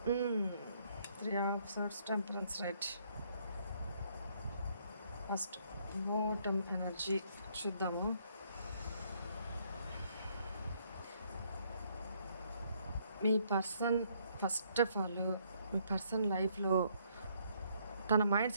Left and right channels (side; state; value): both; inverted; correlation -0.69